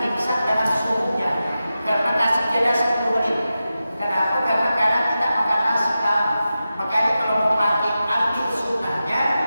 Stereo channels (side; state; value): both; inverted; correlation -0.92